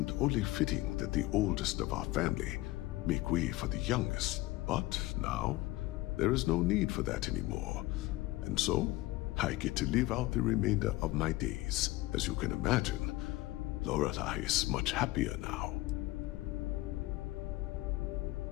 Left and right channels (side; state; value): right; quieter; 19.1 dB